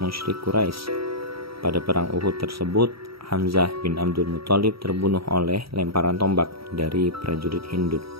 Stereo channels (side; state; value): left; late; 0.75 ms